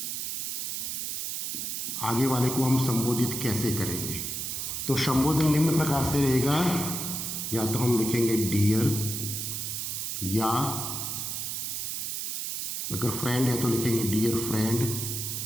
आगे वाले को हम संबोधित कैसे करेंगे? तो संबोधन निम्न प्रकार से रहेगा, या तो हम लिखेंगे डियर, या अगर फ्रेंड है तो लिखेंगे डियर फ्रेंड।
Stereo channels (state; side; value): noise; right; hiss, 3 dB below the sound